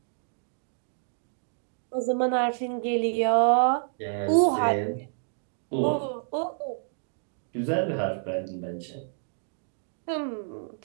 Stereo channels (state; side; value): silent; left; digital silence